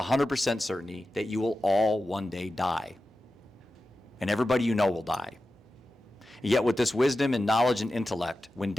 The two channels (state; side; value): normal; both; correlation 0.93